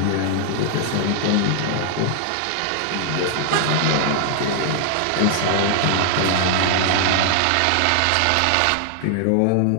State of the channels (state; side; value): different; both; correlation 0.00